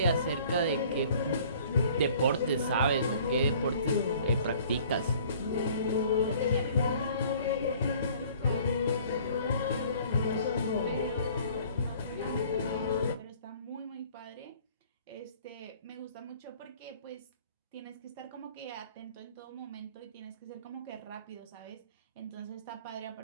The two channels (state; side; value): inverted; both; correlation -0.53